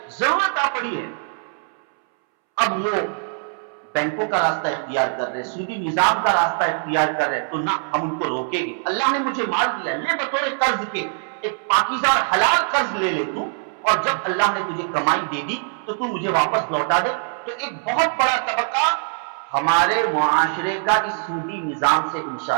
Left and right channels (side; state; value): left; silent; 64 dB below the other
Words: ضرورت آ پڑی ہے، اب وہ بینکوں کا راستہ اختیار کر رہے، سودی نظام کا راستہ اختیار کر رہے، تو نہ ہم ان کو روکیں گے۔ اللہ نے مجھے مال دیا، لے بطور قرض کے، ایک پاکیزہ اور حلال قرض لے لے تو، اور جب اللہ نے تجھے کمائی دے دی تو تو مجھے واپس لوٹا دے۔ تو ایک بہت بڑا طبقہ ہمارے معاشرے کا اس سودی نظام سے